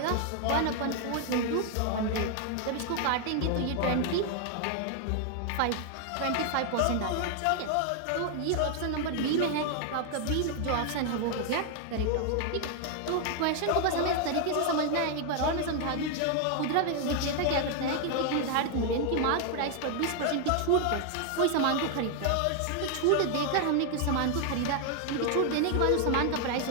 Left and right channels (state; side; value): different; both; correlation 0.00